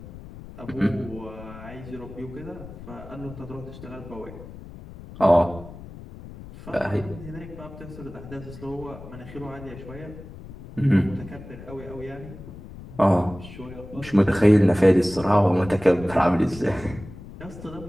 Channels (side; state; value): left; noise; rumble, 15 dB below the sound